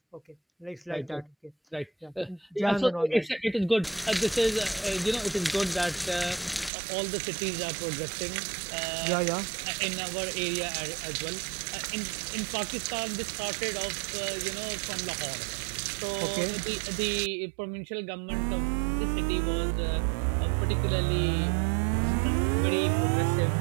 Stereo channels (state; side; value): drops out; left; at 6.7 s